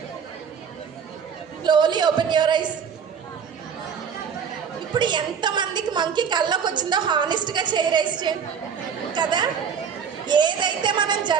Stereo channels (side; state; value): left; quieter; 7.1 dB